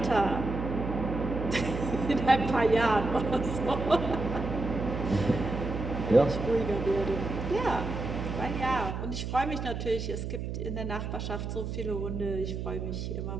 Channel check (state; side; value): noise; right; hum, 4 dB below the sound